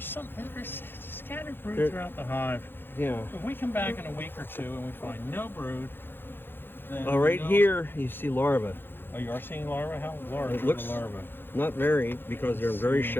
scattered brood throughout the hive. Yeah. If we come back in a week or two and we find no brood, then Oh, right here you see larvae. Oh, you are seeing larvae? How large It are looks the larvae? not very, because they're very see.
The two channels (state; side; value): late; right; 0.10 ms